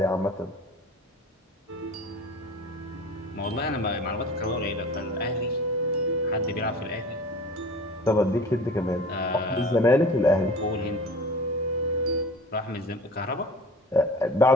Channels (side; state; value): both; normal; correlation 0.41